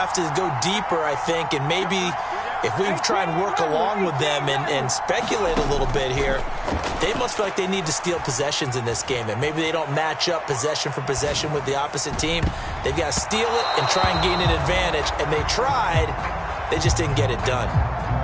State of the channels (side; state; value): both; identical; correlation 1.00